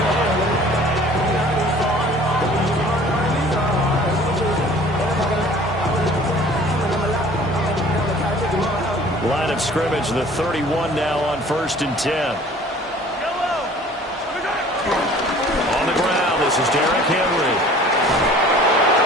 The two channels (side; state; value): both; normal; correlation 0.49